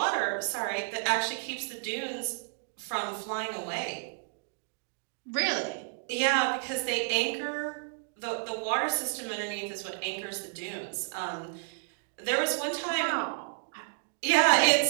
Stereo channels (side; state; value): left; silent; digital silence